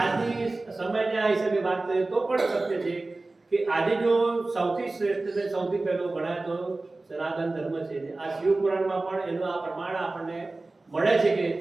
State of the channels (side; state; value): left; quieter; 3.2 dB